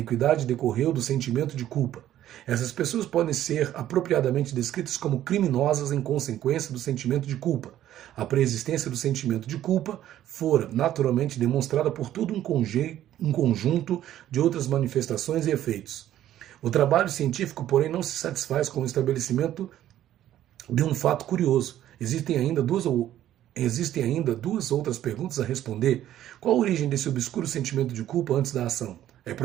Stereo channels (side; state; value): left; quieter; 12.3 dB